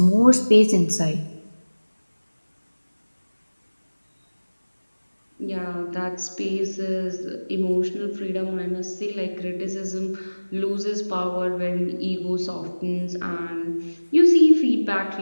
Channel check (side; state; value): both; inverted; correlation -1.00